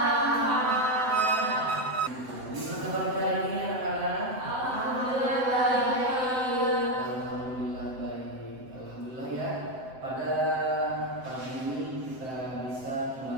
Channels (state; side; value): late; left; 7.8 ms